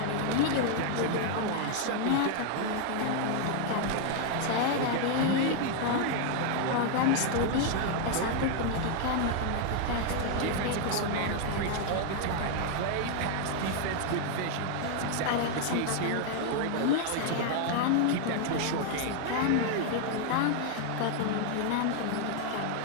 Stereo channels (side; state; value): both; different; correlation 0.00